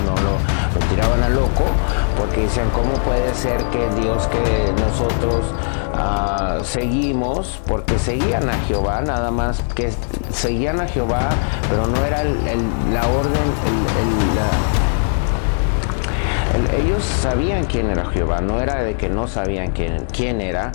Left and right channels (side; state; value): right; silent; digital silence